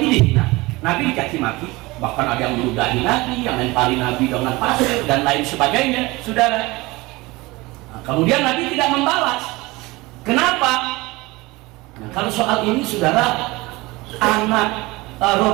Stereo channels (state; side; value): quieter; left; 21.9 dB